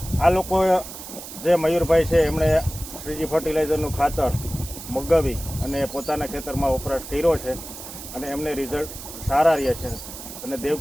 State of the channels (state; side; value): noise; right; hiss, 12 dB below the sound